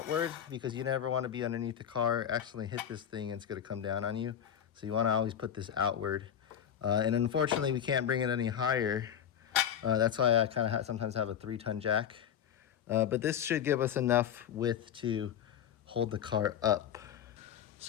because you never want to be underneath the car, accidentally hit this thing, and it's going to come down on you. So you want to always put this outward. And unfortunately, we can't bring it any higher. That's why I kind of sometimes have a 3-ton jack. But this should give us enough width to hold the car up.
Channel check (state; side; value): quieter; right; 9.1 dB